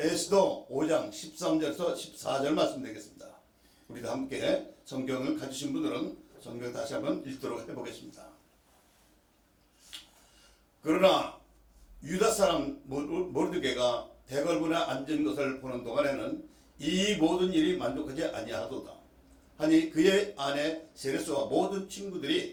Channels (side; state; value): both; identical; correlation 1.00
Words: 에스더 5장 13절에서 14절 말씀드리겠습니다. 우리도 함께 성경을 가지신 분들은 성경 다시 한번 읽도록 해보겠습니다. 그러나 유다 사람 모르드게가 대궐문에 앉은 것을 보는 동안에는 이 모든 일이 만족하지 아니하도다 하니 그의 아내 세레스와 모든